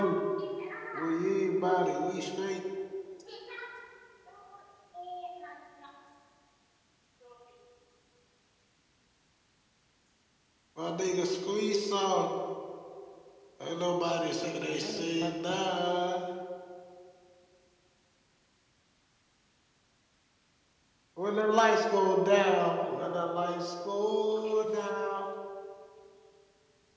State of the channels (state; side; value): identical; both; correlation 1.00